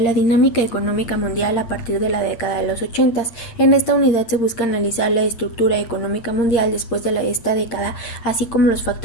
dinámica económica mundial a partir de la década de los 80. En esta unidad se busca analizar la estructura económica mundial después de esta década, así como los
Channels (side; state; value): right; late; 8.7 ms